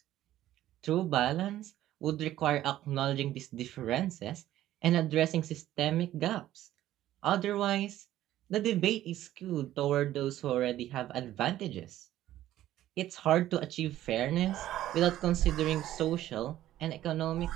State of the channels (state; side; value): quieter; left; 13.5 dB